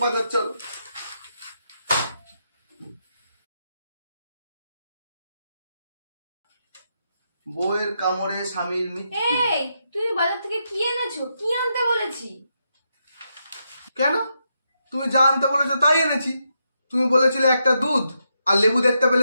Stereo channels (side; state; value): both; inverted; correlation -0.82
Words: বাজার চলো। বউয়ের কামড়ে স্বামীর মৃত্যু। এই, তুমি বাজার থেকে কি এনেছো? কি আনতে বলেছি? কেন? তুমি যা আনতে বলেছো তাই এনেছি। তুমি বলেছিলে একটা দুধ আর লেবু দেখতে